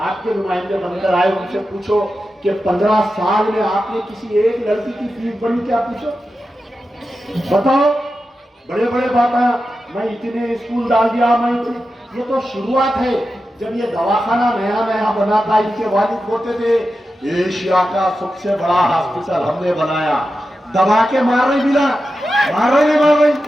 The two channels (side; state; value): both; normal; correlation 0.91